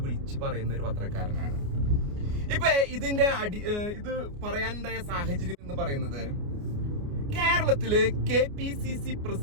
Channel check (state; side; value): late; left; 29 ms